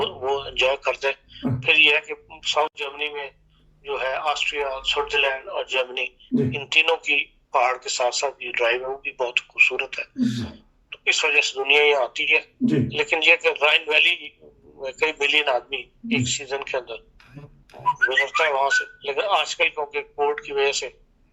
एंजॉय करते हैं। फिर ये है कि साउथ जर्मनी में जो है ऑस्ट्रिया, स्विट्जरलैंड और जर्मनी, इन तीनों की पहाड़ के साथ साथ ये ड्राइव है वो भी बहुत खूबसूरत है, तो इस वजह से दुनिया यहाँ आती है। लेकिन ये कि राइन वैली कई मिलियन आदमी एक सीजन के अंदर गुजरता है वहां से, लेकिन आजकल क्योंकि कोर्ट की वजह से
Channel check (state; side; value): identical; both; correlation 1.00